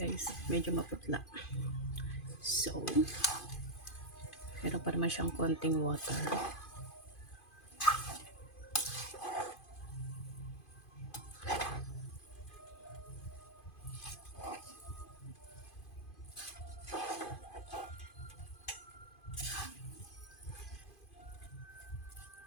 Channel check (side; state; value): right; late; 2.5 ms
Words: Medyo maputla. So, meron pa naman siyang konting water.